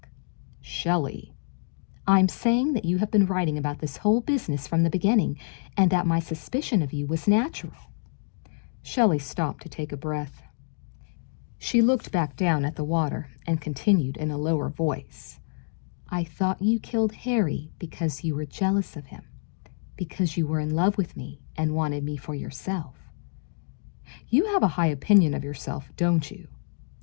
Shelley, I'm saying that you have been writing about this whole business from the beginning, and that my suspicion of you was natural. Shelley stopped to take a breath. She looked back down at the water and continued in a lower voice. I thought you killed Harry because you were jealous of him, because you were in love with me and wanted me for yourself. You have a high opinion of yourself, don't you?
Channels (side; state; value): right; silent; digital silence